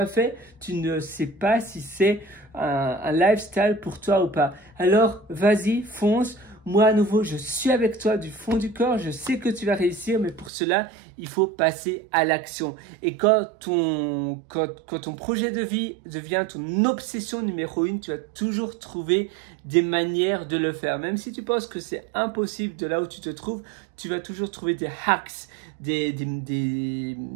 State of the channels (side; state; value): left; drops out; at 10.5 s